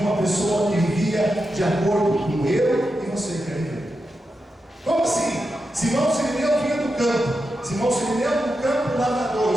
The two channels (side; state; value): both; normal; correlation 0.88